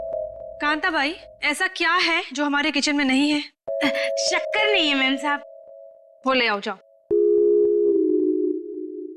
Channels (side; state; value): both; identical; correlation 1.00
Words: कांता भाई, ऐसा क्या है जो हमारे किचन में नहीं है? शक्कर नहीं है मेम साहब। वो ले आओ, जाओ